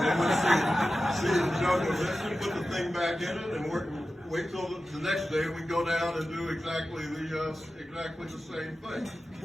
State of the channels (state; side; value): normal; both; correlation 0.94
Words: wouldn't see the jug of this, and put the thing back in it, and wait till the next day we go down and do exactly the same thing.